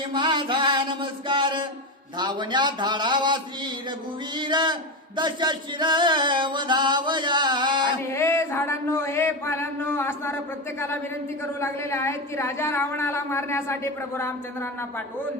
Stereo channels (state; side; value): normal; both; correlation 0.17